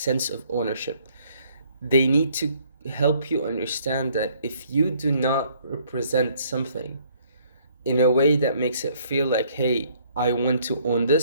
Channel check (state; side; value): inverted; both; correlation -0.63